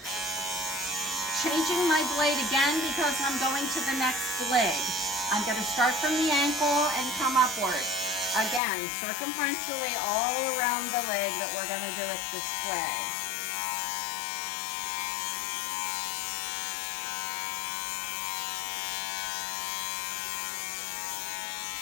Changing my blade again because I'm going to the next leg. I'm going to start from the ankle and come upward. Again, circumferentially all around the leg that we're going to do it this way.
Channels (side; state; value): right; drops out; at 8.6 s